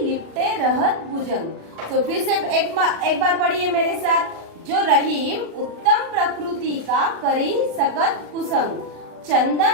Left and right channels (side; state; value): left; late; 36 ms